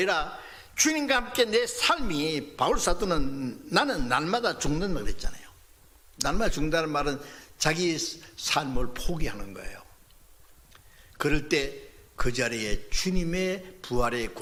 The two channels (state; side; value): identical; both; correlation 1.00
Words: 주님과 함께 내 삶이, 바울 사도는 나는 날마다 죽는다 그랬잖아요. 날마다 죽는다는 말은 자기 삶을 포기하는 거예요. 그럴 때 그 자리에 주님의 부활의